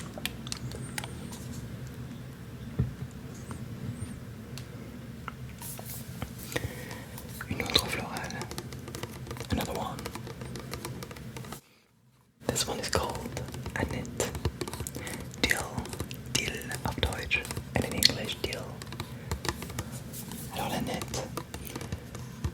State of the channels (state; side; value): identical; both; correlation 1.00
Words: Une autre florale, another one. This one is called Annette. Dill auf Deutsch, and in English Dill. Alors l'Annette,